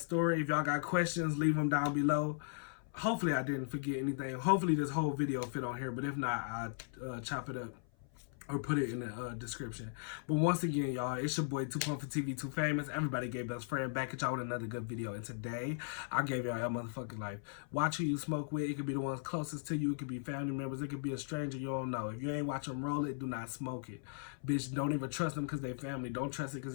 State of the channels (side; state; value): right; silent; 53 dB below the other